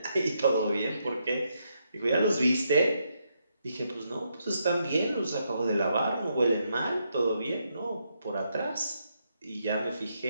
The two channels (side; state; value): both; inverted; correlation -0.79